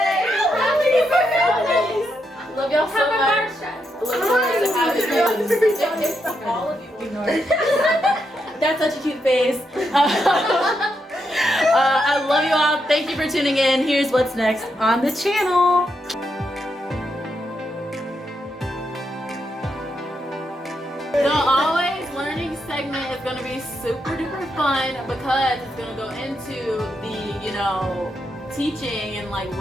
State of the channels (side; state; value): both; normal; correlation 0.82